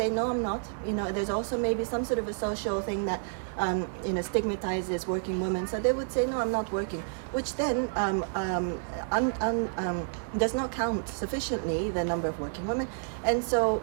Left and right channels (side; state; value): left; silent; 58 dB below the other